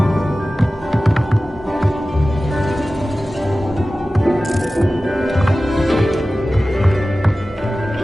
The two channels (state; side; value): normal; both; correlation 0.96